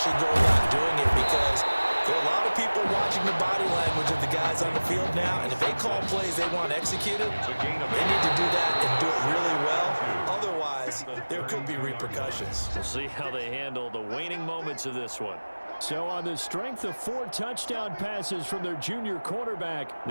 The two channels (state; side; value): inverted; both; correlation -1.00